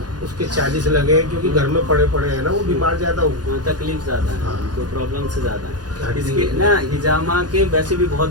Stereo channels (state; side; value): late; left; 0.69 ms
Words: उसके 40 लगे हैं, क्योंकि घर में पड़े पड़े हैं ना, वो बीमार ज्यादा हो। तकलीफ ज्यादा है, हाँ। तो प्रॉब्लम से ज्यादा है हड्डी इसके है। ना। हिजामा के वैसे भी